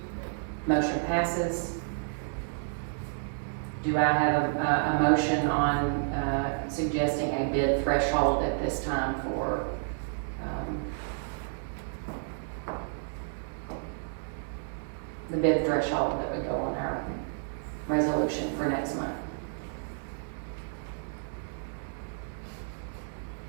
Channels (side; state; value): left; silent; digital silence